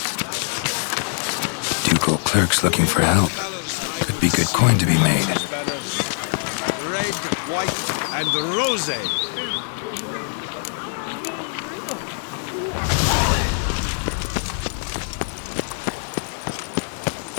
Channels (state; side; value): silent; right; 63 dB below the other